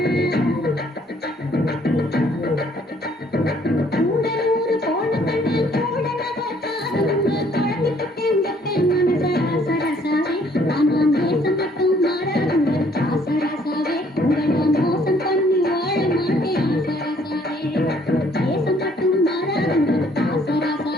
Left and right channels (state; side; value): normal; both; correlation 0.62